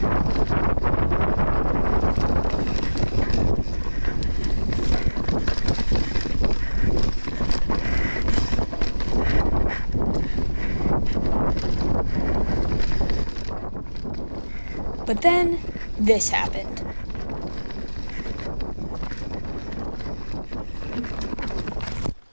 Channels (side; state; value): both; inverted; correlation -1.00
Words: But then, this happened.